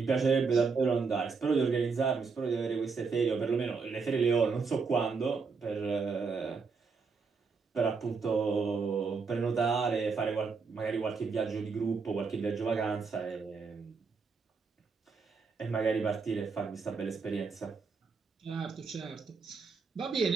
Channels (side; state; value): left; quieter; 4.9 dB